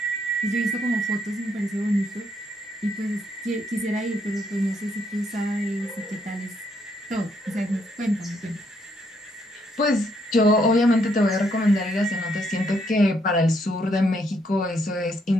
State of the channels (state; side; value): normal; both; correlation 0.73